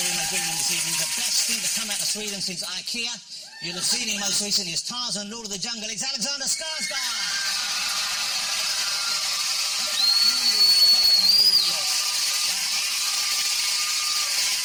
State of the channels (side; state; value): both; identical; correlation 1.00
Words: my green room this evening, the best thing to come out of Sweden since IKEA. You'll have seen him most recently as Tarzan, Lord of the Jungle. It's Alexander Skarsgård!